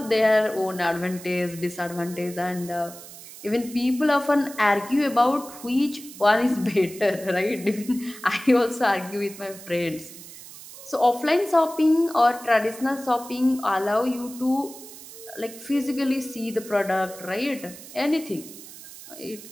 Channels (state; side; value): noise; right; hiss, 16 dB below the sound